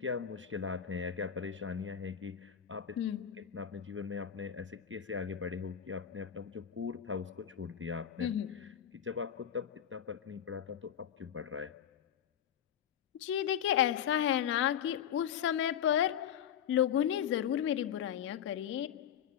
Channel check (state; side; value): quieter; right; 9.2 dB